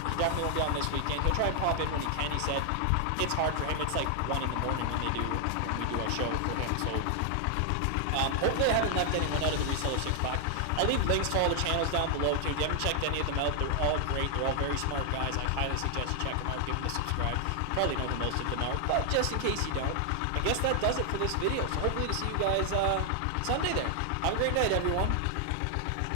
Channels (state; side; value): different; both; correlation 0.00